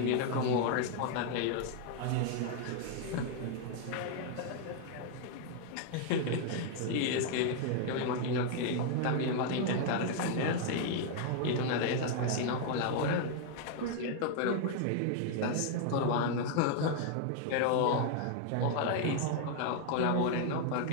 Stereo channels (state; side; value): different; both; correlation 0.00